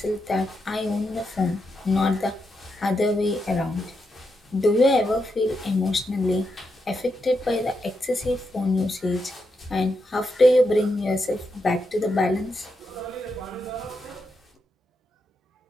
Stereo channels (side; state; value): both; normal; correlation 0.84